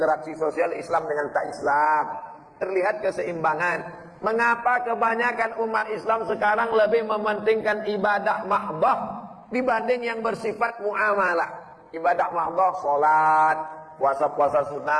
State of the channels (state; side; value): identical; both; correlation 1.00